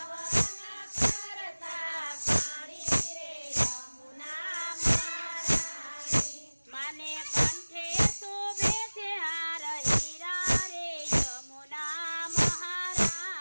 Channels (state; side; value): inverted; both; correlation -1.00